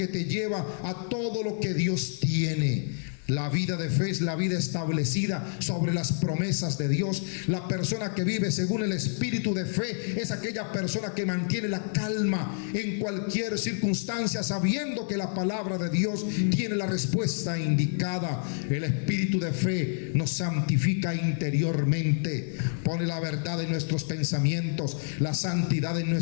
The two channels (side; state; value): right; silent; digital silence